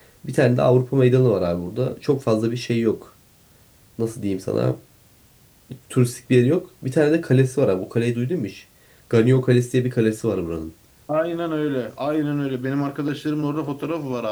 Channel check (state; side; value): identical; both; correlation 1.00